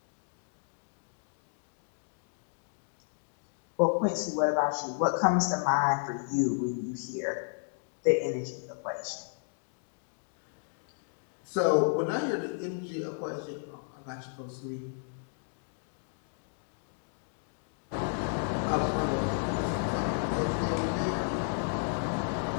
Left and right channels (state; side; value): silent; right; digital silence